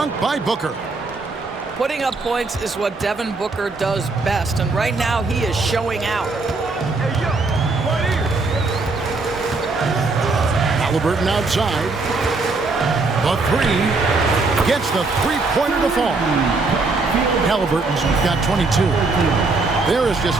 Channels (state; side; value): quieter; left; 3.7 dB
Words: by Booker. Putting up points is what Devin Booker does best, and right now he is showing out. Halliburton outside. The three gets the three-pointer to fall. Halliburton's got 22. There is just